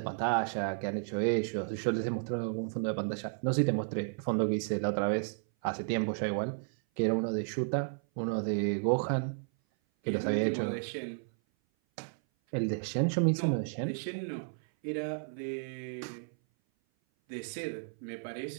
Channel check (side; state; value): left; silent; 56 dB below the other